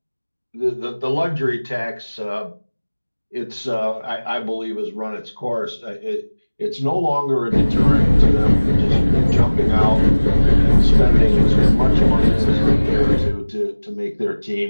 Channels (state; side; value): inverted; both; correlation -1.00